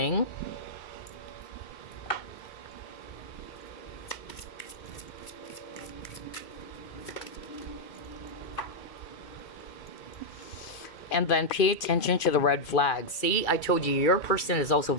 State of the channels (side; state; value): right; late; 2.3 ms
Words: And then pay attention to the red flags. See, I told you, your person is also